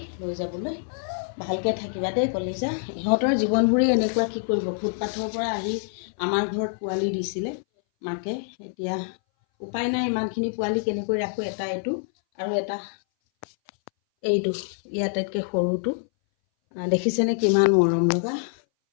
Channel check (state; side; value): silent; right; 59 dB below the other